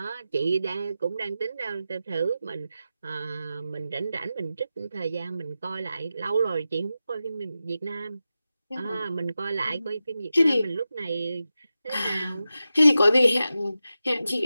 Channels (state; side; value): inverted; both; correlation -0.92